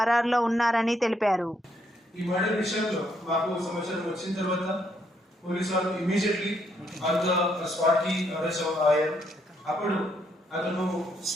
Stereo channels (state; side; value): normal; both; correlation 0.73